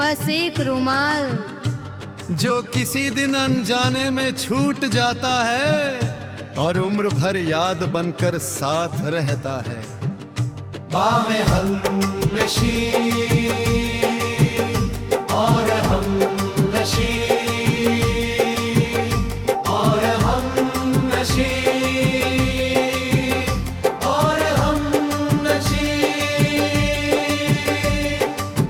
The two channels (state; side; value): identical; both; correlation 1.00